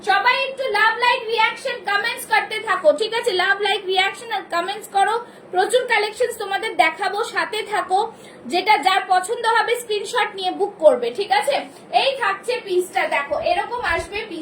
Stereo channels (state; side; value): identical; both; correlation 1.00